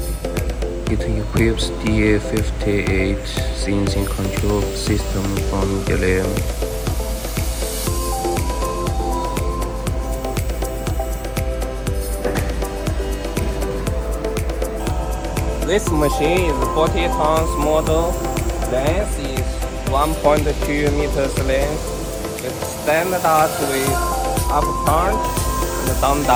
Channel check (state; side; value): identical; both; correlation 1.00